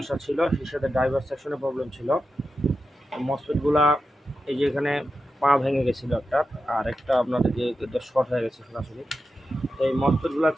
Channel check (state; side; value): normal; both; correlation 0.90